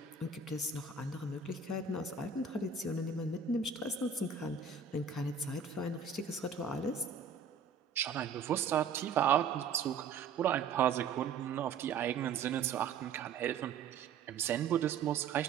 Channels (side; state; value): left; quieter; 5.8 dB